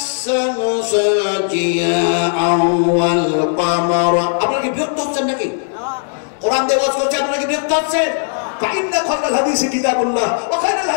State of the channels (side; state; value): right; silent; digital silence